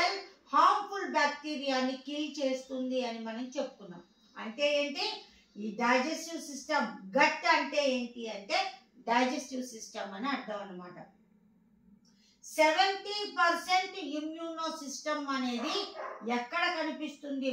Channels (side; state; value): both; identical; correlation 1.00